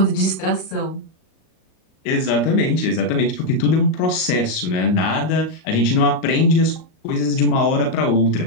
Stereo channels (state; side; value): late; right; 38 ms